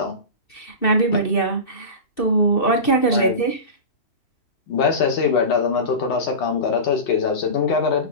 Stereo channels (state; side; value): late; right; 2.6 ms